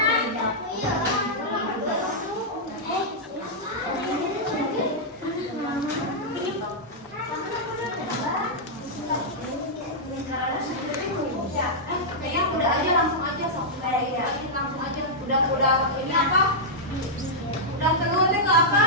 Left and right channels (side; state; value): both; normal; correlation -0.08